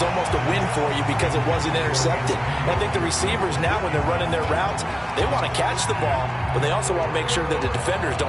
almost a win for you because it wasn't intercepted. And I think the receivers now, when they're running their routes, they want to catch the ball, but they also want to make sure that the defenders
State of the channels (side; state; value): both; identical; correlation 1.00